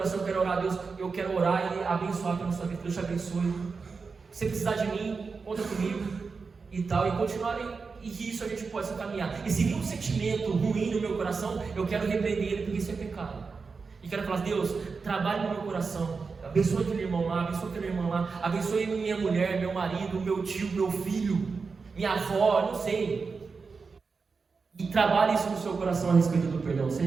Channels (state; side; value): quieter; left; 4.8 dB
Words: quero orar a Deus, eu quero orar e abençoar pela sua vida. Deus te abençoe. Se precisar de mim, conta comigo e tal, e continuar, e isso a gente pode caminhar. E se vir um sentimento ruim no meu coração, eu quero repreender ele, porque isso é pecado. E quero falar, Deus, trabalhe no meu coração, abençoe aquele irmão lá, abençoe aquela irmã lá, abençoe minha mulher, meu marido, meu tio, meu filho, minha avó, não sei. E trabalhe isso no seu coração a respeito do perdão.